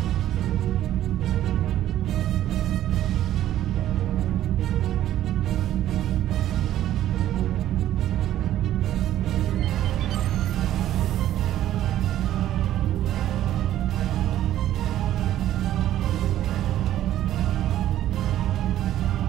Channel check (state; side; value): quieter; left; 12.6 dB